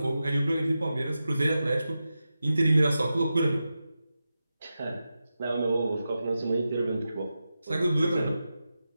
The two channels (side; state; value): both; inverted; correlation -0.91